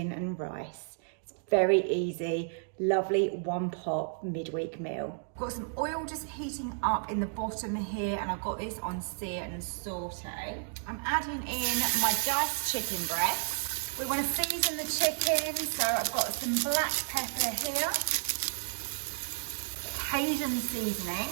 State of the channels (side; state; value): left; silent; digital silence